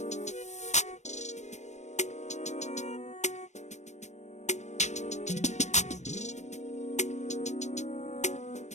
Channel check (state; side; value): late; right; 0.34 ms